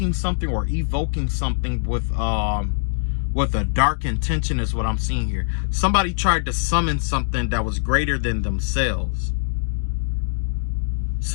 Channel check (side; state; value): right; silent; digital silence